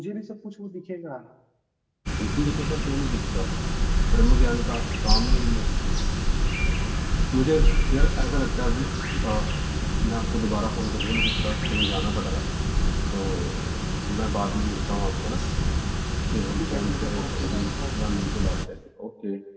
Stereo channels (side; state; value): both; identical; correlation 1.00